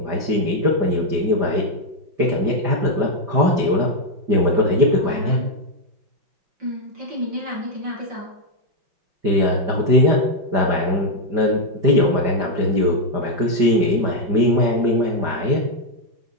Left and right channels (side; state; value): left; late; 5.1 ms